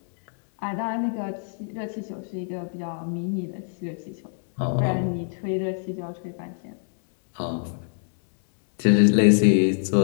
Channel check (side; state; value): right; silent; digital silence